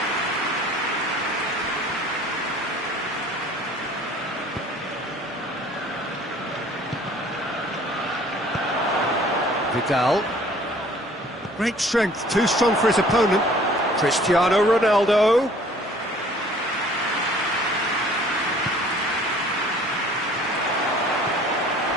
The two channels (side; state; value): both; normal; correlation 0.53